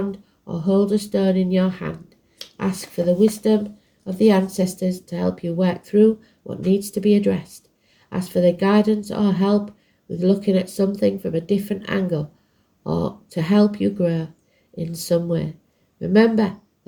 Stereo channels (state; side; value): identical; both; correlation 1.00